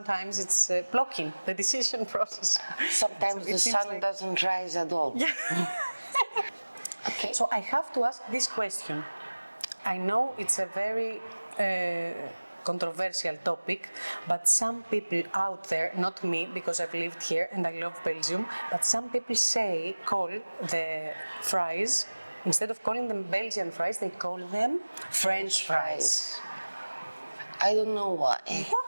it's blocking the decision process. Sometimes So the sun doesn't rise at all. Yeah. Okay. So I have to ask this question. I know it's a very controversial topic, but some people out there, not me, because I've lived here and I love Belgium, but some people call the fries, instead of calling them Belgian fries, they call them French fries. I don't know why.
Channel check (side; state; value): both; inverted; correlation -1.00